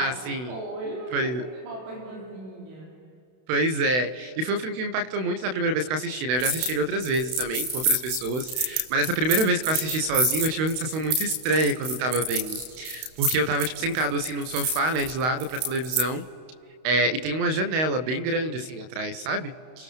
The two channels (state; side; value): late; left; 32 ms